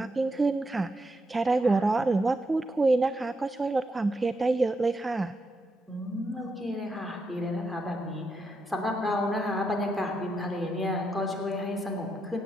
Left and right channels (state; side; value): normal; both; correlation 0.83